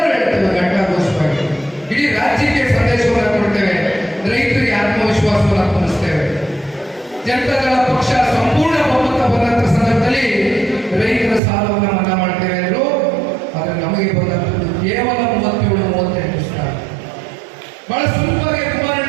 ಹೇಳ್ತೇವೆ ಘಂಟಾಘೋಷವಾಗಿ, ಇಡೀ ರಾಜ್ಯಕ್ಕೆ ಸಂದೇಶವನ್ನು ಕೊಡ್ತೇವೆ, ರೈತರಿಗೆ ಆತ್ಮವಿಶ್ವಾಸವನ್ನು ತುಂಬಿಸ್ತೇವೆ. ಜನತಾದಳ ಪಕ್ಷ ಸಂಪೂರ್ಣ ಬಹುಮತ ಬಂದಂತ ಸಂದರ್ಭದಲ್ಲಿ ರೈತರ ಸಾಲವನ್ನು ಮನ್ನಾ ಮಾಡ್ತೇವೆ ಅಂದರು. ಆದರೆ ನಮಗೆ ಬಂದಂಥದ್ದು ಕೇವಲ 37-38 ಸಾವಿರ. ಬಹಳ ಸುಲಭವಾಗಿ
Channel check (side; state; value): left; drops out; at 11.4 s